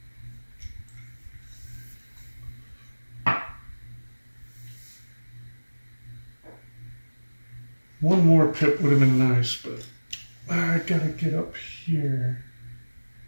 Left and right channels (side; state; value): both; inverted; correlation -1.00